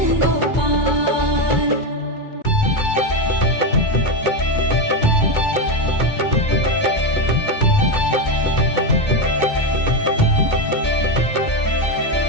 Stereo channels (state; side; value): late; right; 2.2 ms